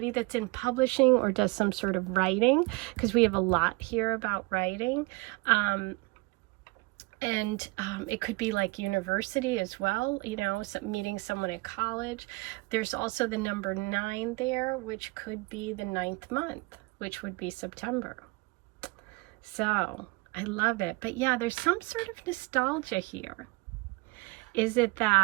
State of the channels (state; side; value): quieter; left; 25.9 dB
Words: that's in publishing or does some sort of writing, because we have a lot here about writing. It could be like university as well, you know, meeting someone at college. There's also the number 9 there, which could be the 9th month, which would be September. So I love it. But yeah, there's some sort of nostalgia here. Is it